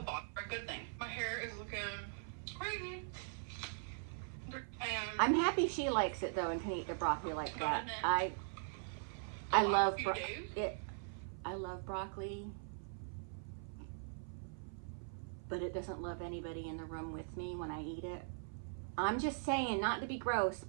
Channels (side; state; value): left; silent; 50 dB below the other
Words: a good thing. My hair is looking crazy. And I'm happy she likes it though and can eat the broccoli like that. I love it. I love broccoli, but it doesn't love anybody in the room with me when I eat it. I'm just saying, not to be gross,